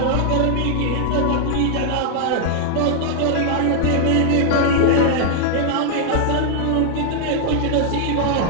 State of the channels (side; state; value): both; different; correlation 0.00